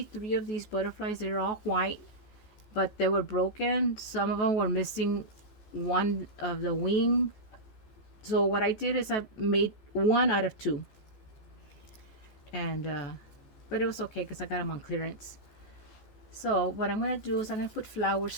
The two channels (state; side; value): late; right; 14 ms